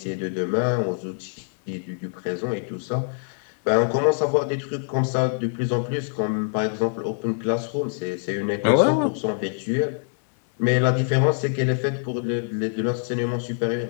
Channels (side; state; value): right; silent; digital silence